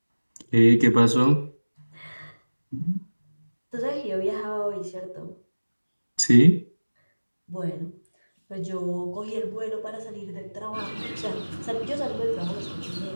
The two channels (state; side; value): inverted; both; correlation -1.00